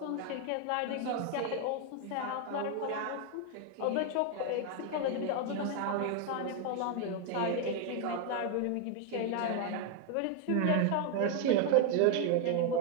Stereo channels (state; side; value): different; both; correlation 0.01